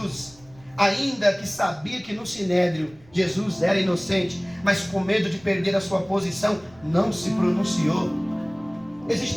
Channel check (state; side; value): noise; right; rumble, 26 dB below the sound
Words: ainda que sabia que no sinédrio Jesus era inocente, mas com medo de perder a sua posição, não se pronunciou.